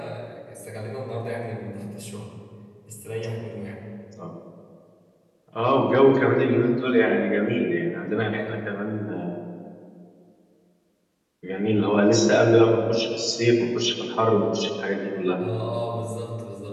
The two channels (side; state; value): both; identical; correlation 1.00